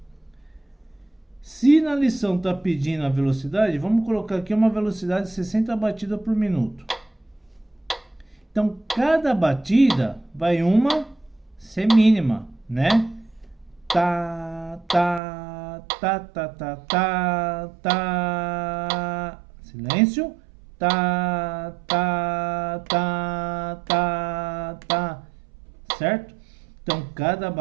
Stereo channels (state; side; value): drops out; left; at 15.2 s